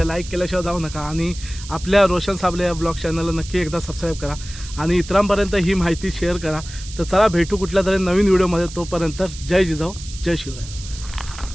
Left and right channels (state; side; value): noise; right; hiss, 14 dB below the sound